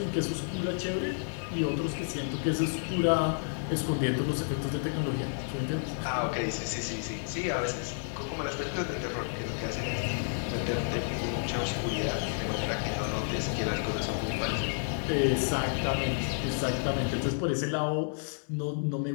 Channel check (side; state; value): right; silent; 57 dB below the other